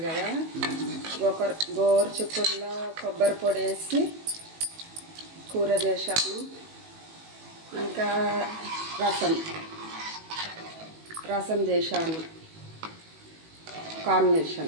కదా. గోరు చిక్కుడులో కొబ్బరి పొడి వేసి కూర చేశాను. ఇంకా రసం చేశాను,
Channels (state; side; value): late; left; 18 ms